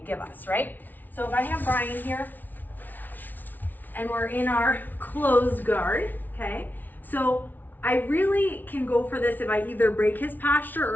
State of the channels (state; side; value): late; right; 0.084 ms